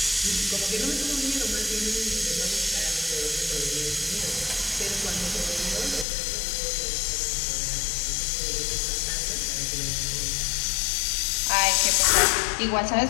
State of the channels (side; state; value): right; drops out; at 6.1 s